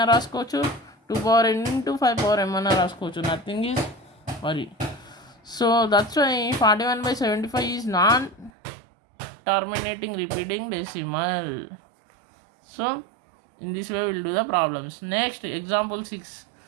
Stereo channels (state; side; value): drops out; left; at 8.5 s